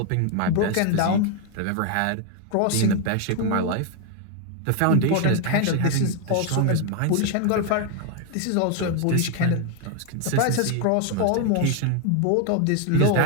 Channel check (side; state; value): both; different; correlation 0.01